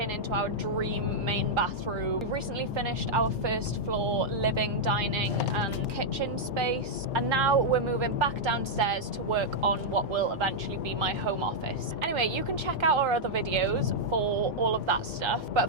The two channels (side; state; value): both; normal; correlation -0.04